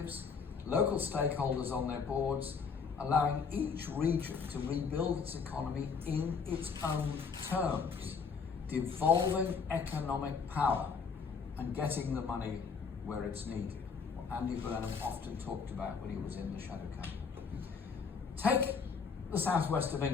local stakeholders on their boards, allowing each region to rebuild its economy in its own terms, devolving economic power and getting the money where it's needed, what Andy Burnham often talked about when he was in the shadow cabinet. Take the southwest of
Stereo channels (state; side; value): quieter; right; 5.6 dB